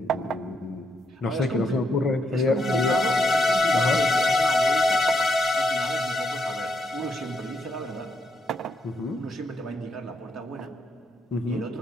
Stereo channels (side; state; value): both; normal; correlation 0.78